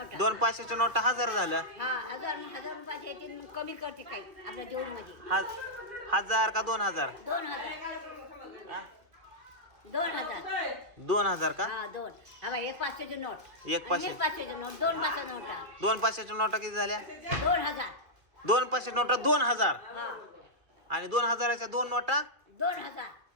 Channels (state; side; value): late; left; 2.6 ms